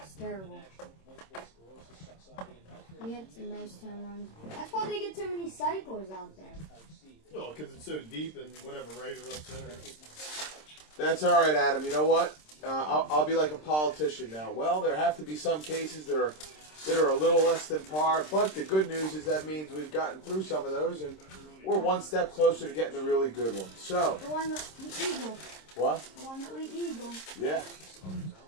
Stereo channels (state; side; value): late; right; 26 ms